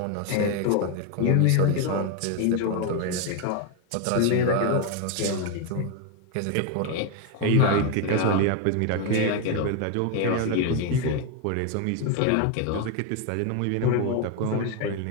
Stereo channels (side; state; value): both; different; correlation 0.01